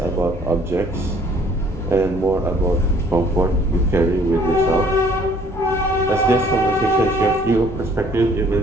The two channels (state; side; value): normal; both; correlation 0.58